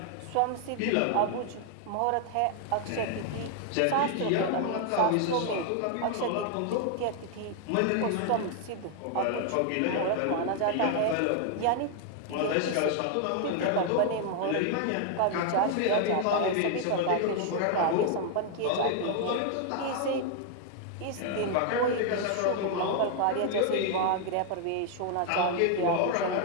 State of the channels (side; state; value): both; different; correlation 0.00